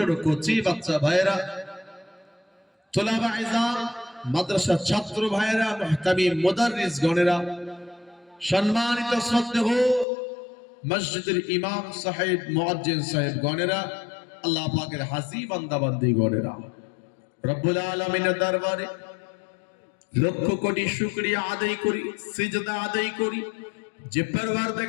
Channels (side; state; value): right; drops out; at 10.1 s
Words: কচি বাচ্চা ভাইয়েরা তোলাবা ইজাম মাদ্রাসা ছাত্র ভাইয়েরা মুহতামিম মুদাররিস গণেরা সম্মানিত শ্রদ্ধেয় মসজিদের ইমাম সাহেব মুয়াজ্জিন সাহেব গণেরা আল্লাহ পাকের হাজী বান্দা বান্দি গণেরা রব্বুল আলামিনের দরবারে লক্ষ কোটি শুকরিয়া আদায় করি সিজদা আদায় করি যে